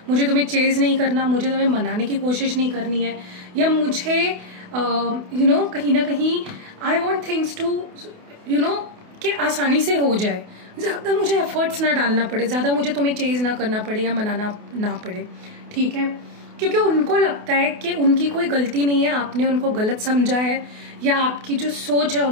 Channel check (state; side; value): late; left; 28 ms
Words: मुझे तुम्हें चेज नहीं करना, मुझे तुम्हें मनाने की कोशिश नहीं करनी है, या मुझे कहीं ना कहीं आई वॉन्ट थिंग्स टू कि आसानी से हो जाए, ज़्यादा मुझे एफर्ट्स ना डालना पड़े, ज़्यादा मुझे तुम्हें चेज ना करना पड़े या मनाना ना पड़े, ठीक है। क्योंकि उनको लगता है कि उनकी कोई गलती नहीं है, आपने उनको गलत समझा है, या आपकी जो सोच है